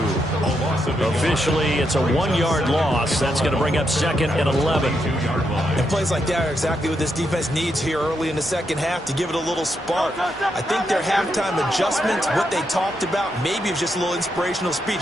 Officially, it's a 1-yard loss. That's going to bring up second and 11. And plays like that are exactly what this defense needs here early in the second half to give it a little spark. I think their halftime adjustments, what they talked about, maybe it was just a little inspirational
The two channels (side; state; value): both; normal; correlation 0.81